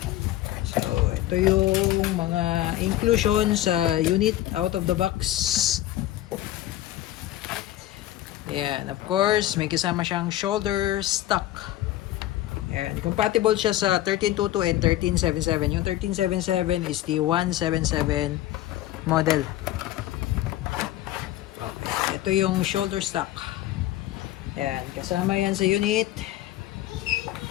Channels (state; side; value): quieter; right; 14.3 dB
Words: So, ito yung mga inclusion sa unit out of the box. Yan, of course, may kasama siyang shoulder stock. Yan, compatible siya sa 1322 and 1377. Yung 1377 is the 177 model. Okay, ito yung shoulder stock. Yan, kasama yan sa unit.